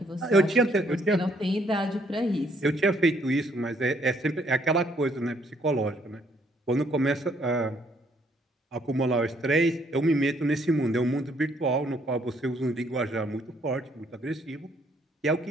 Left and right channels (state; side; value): normal; both; correlation 0.67